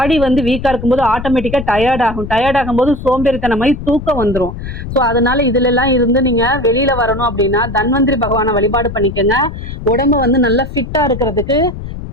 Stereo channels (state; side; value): noise; left; rumble, 9 dB below the sound